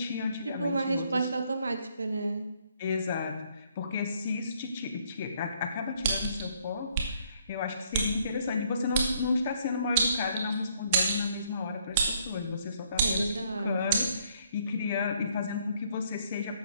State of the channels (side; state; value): both; inverted; correlation -0.67